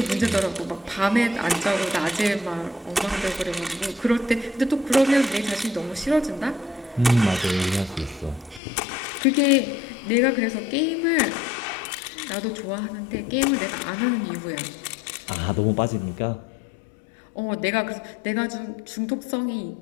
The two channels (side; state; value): right; drops out; at 8.6 s